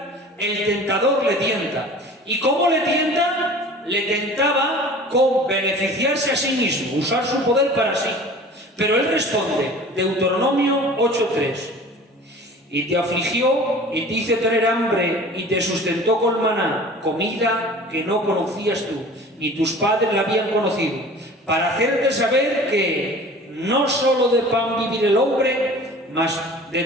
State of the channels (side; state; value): both; normal; correlation 0.43